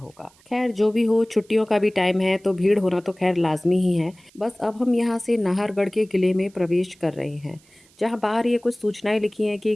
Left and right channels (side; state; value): right; noise; hiss, 30 dB below the sound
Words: खैर जो भी हो, छुट्टियों का भी टाइम है तो भीड़ होना तो खैर लाजमी ही है। बस अब हम यहाँ से नाहरगढ़ के किले में प्रवेश कर रहे हैं, जहाँ बाहर ये कुछ सूचनाएं लिखी हैं कि